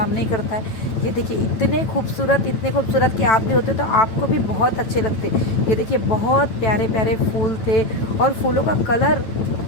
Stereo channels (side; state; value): right; late; 9.0 ms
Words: नहीं करता है। ये देखिए इतने खूबसूरत कि आप भी होते तो आपको भी बहुत अच्छे लगते। ये देखिए बहुत प्यारे प्यारे फूल थे और फूलों का कलर